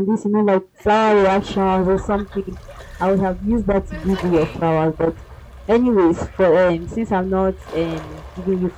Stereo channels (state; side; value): identical; both; correlation 1.00